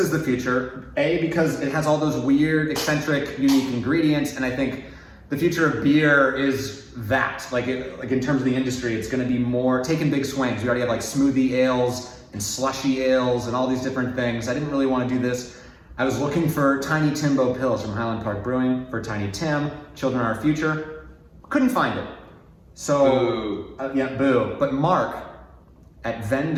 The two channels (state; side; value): identical; both; correlation 1.00